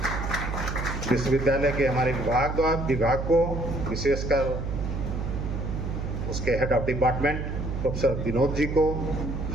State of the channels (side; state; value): right; noise; hum, 4 dB below the sound